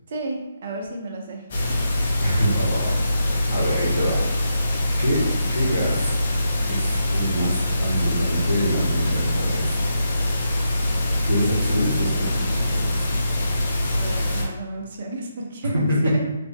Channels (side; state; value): both; inverted; correlation -0.83